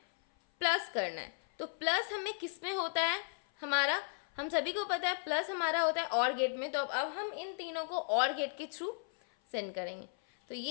प्लस करना है। तो प्लस हमें किस में होता है हमारा, हम सभी को पता है प्लस हमारा होता है और गेट में। तो अब हम इन तीनों को और गेट के थ्रू सेंड करेंगे। तो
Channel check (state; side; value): silent; right; 54 dB below the other